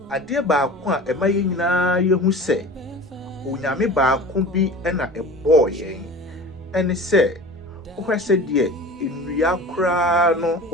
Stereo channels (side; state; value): both; normal; correlation 0.38